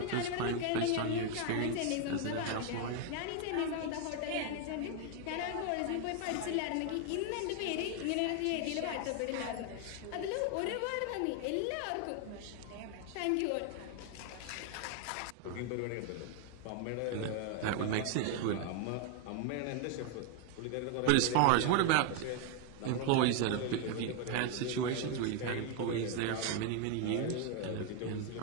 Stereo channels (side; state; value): both; different; correlation 0.01